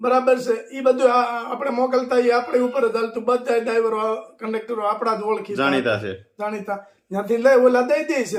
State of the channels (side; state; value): both; identical; correlation 1.00